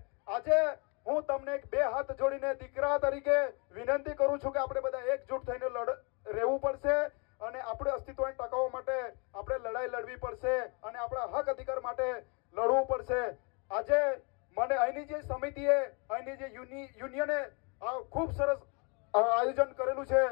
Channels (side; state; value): right; quieter; 33.3 dB